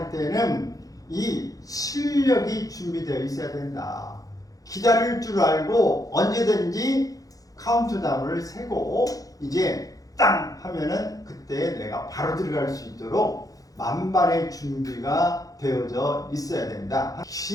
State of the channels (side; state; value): right; late; 0.17 ms